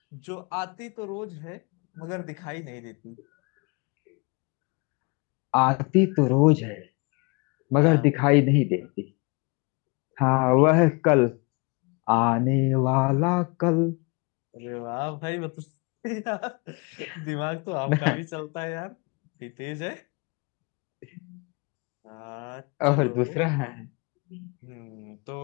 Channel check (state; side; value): quieter; right; 29.9 dB